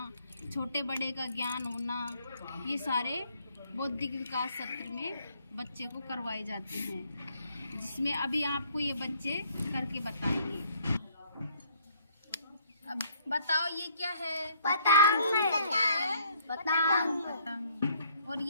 छोटे बड़े का ज्ञान होना, ये सारे बौद्धिक विकास सत्र में बच्चे को करवाए जाते हैं, जिसमें अभी आपको ये बच्चे करके बताएंगे। अब बताओ ये क्या है? पतंग। और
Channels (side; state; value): both; inverted; correlation -0.63